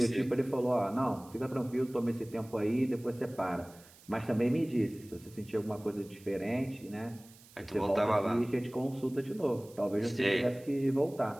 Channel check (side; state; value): right; noise; hiss, 24 dB below the sound